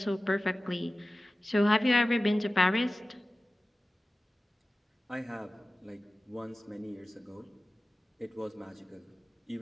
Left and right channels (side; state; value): both; normal; correlation 0.96